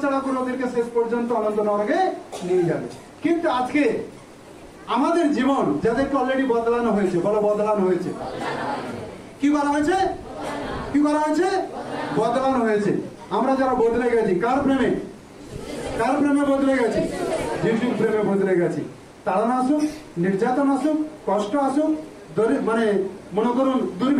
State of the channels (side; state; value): both; identical; correlation 1.00